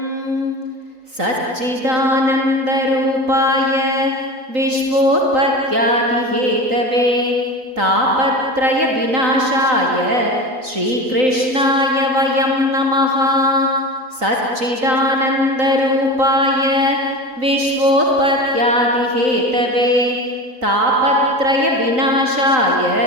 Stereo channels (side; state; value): left; late; 3.9 ms